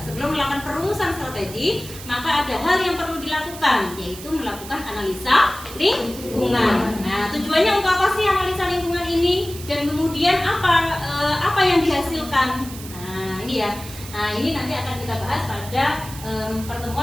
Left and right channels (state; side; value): noise; right; hiss, 14 dB below the sound